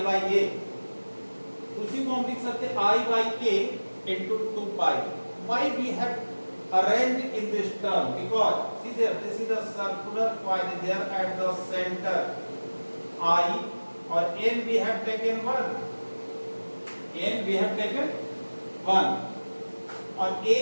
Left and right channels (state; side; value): inverted; both; correlation -1.00